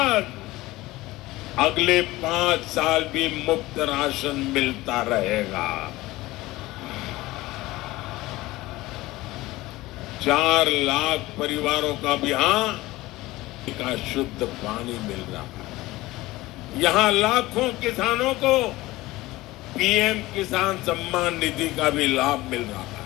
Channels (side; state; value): right; quieter; 18.8 dB